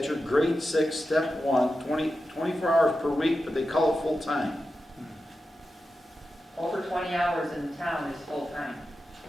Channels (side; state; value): both; normal; correlation 0.91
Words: grade 6, step 1, 24 hours per week, but they call it full-time. Over 20 hours in town is full-time,